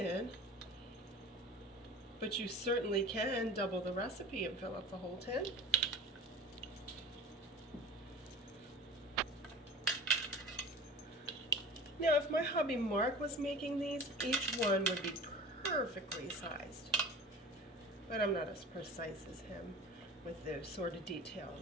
but you certainly can double the recipe and fill up the whole tin. Now, if my hubby Mark was making these, each one would be perfectly sized. But I'm not as precise as him with those sort of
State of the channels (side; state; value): both; normal; correlation 0.37